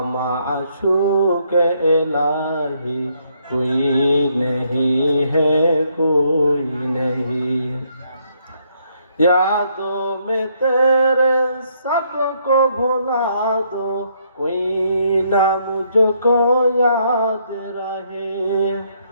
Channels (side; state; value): both; inverted; correlation -0.72